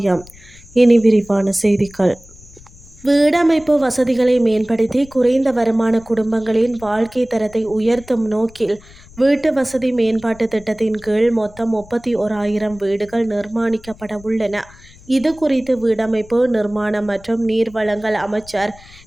இனி விரிவான செய்திகள். வீடமைப்பு வசதிகளை மேம்படுத்தி குறைந்த வருமான குடும்பங்களின் வாழ்க்கை தரத்தை உயர்த்தும் நோக்கில் வீட்டு வசதி மேம்பாட்டு திட்டத்தின் கீழ் மொத்தம் 31,000 வீடுகள் நிர்மாணிக்கப்பட உள்ளன. இது குறித்து வீடமைப்பு, நிர்மாணம் மற்றும் நீர்வளங்கள் அமைச்சர்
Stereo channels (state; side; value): noise; left; rumble, 22 dB below the sound